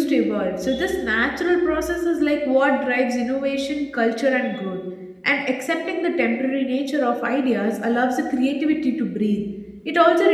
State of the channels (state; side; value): identical; both; correlation 1.00